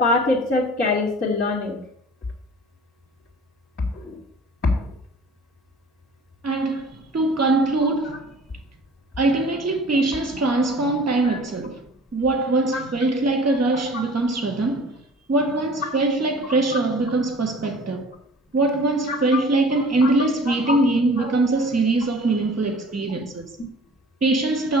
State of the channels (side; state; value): both; normal; correlation 0.46